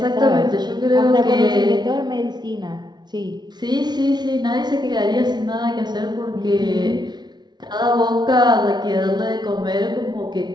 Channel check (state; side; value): late; left; 0.20 ms